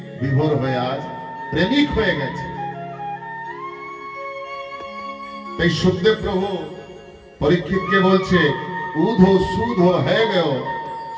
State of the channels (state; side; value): identical; both; correlation 1.00